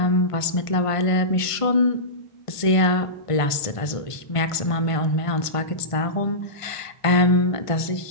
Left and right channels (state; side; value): late; right; 1.5 ms